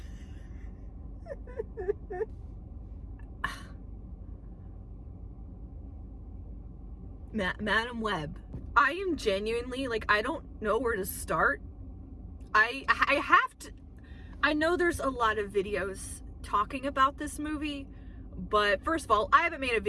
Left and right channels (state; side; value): identical; both; correlation 1.00